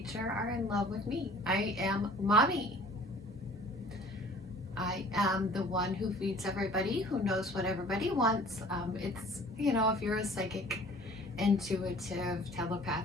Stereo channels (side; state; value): both; normal; correlation 0.50